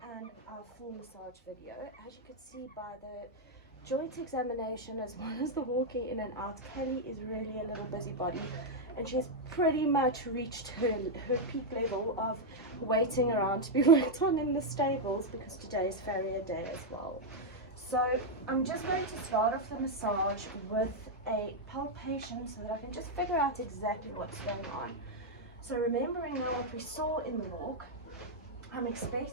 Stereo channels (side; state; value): both; normal; correlation -0.01